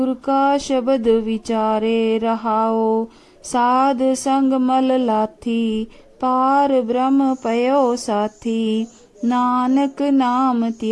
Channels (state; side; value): identical; both; correlation 1.00